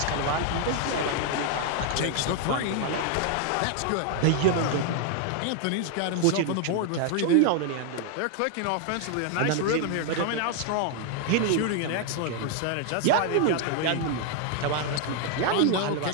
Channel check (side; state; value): both; different; correlation 0.00